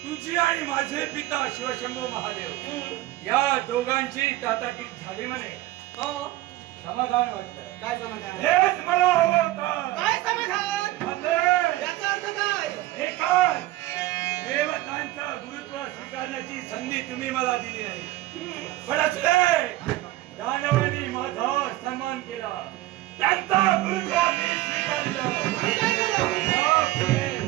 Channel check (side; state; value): left; quieter; 16.5 dB